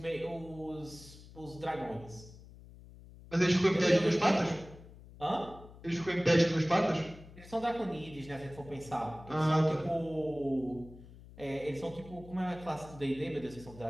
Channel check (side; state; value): left; noise; hum, 19 dB below the sound